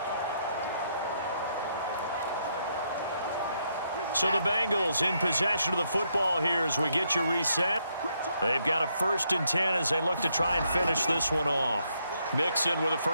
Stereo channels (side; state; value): both; inverted; correlation -0.76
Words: So the Bengals in possession of the football here as we get you reset. They've got a 1st and 10 as they look to try and finish this one off. Mixon with a